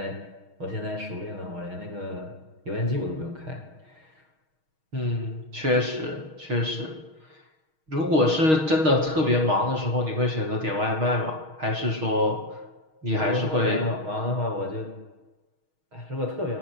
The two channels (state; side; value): late; left; 6.4 ms